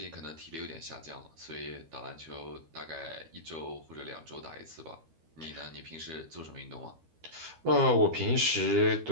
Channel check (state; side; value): late; left; 13 ms